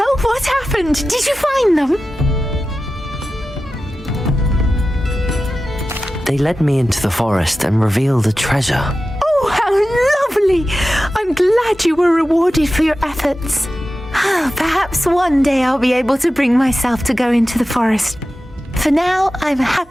what happened? Did you find them? They led me into the forest and revealed a treasure. Oh, how lovely! I'm glad you were rewarded for your efforts. Perhaps one day I'll be able to bring myself to go into the forest. For now, I'm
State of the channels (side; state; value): both; normal; correlation 0.93